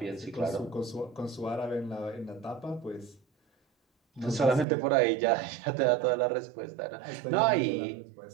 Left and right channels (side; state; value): left; drops out; at 4.7 s